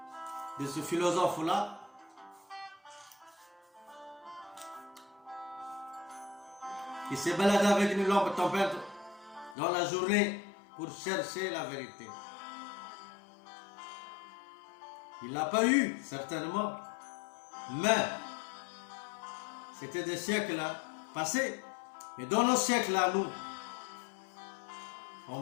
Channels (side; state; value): right; drops out; at 9.6 s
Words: de ce philosophe-là, qui s'est baladé avec une lampe tempête dans la journée pour chercher la vérité. Il ne l'a pas eu, certainement, mais c'était des siècles passés. Mais dans nos siècles à nous,